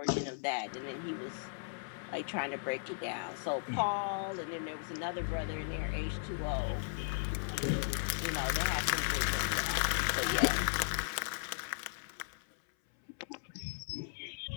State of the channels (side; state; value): right; silent; 53 dB below the other